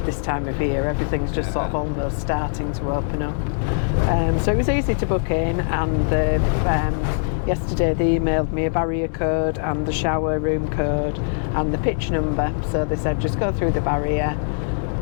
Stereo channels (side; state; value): right; silent; digital silence